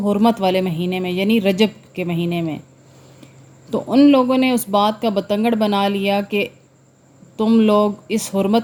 حرمت والے مہینے میں، یعنی رجب کے مہینے میں۔ تو ان لوگوں نے اس بات کا بتنگڑ بنا لیا کہ تم لوگ اس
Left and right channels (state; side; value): identical; both; correlation 1.00